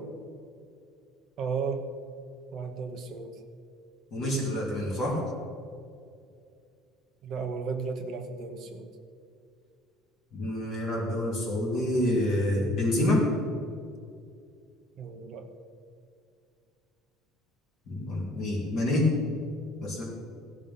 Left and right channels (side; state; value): both; normal; correlation 0.56